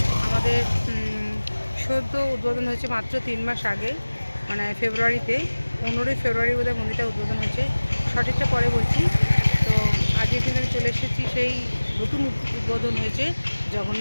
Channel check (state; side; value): inverted; both; correlation -1.00